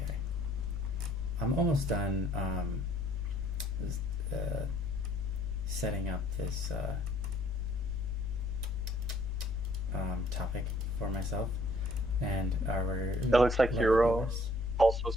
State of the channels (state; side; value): normal; both; correlation 0.61